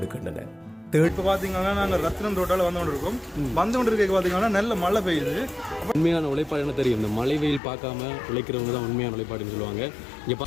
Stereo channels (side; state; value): right; drops out; at 7.6 s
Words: இப்போ பார்த்தீங்கன்னா நாங்கள் ரத்னம் ரோட்டால் வந்து கொண்டு இருக்கோம். வந்து கொண்டு இருக்க பார்த்தீங்கன்னா நல்ல மழை பெய்யுது. உண்மையான உழைப்பாடு என்ன தெரியும், இந்த மழை வெயில் பார்க்காம உழைக்கிறவங்க தான் உண்மையான உழைப்பாடுன்னு சொல்லுவாங்க. இங்கே